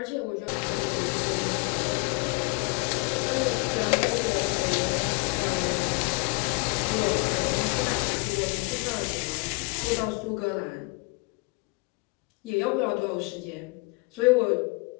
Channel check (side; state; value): right; quieter; 28.1 dB